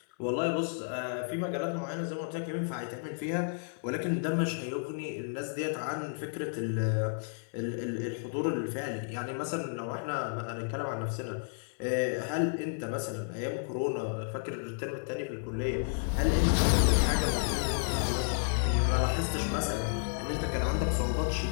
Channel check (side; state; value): right; silent; 57 dB below the other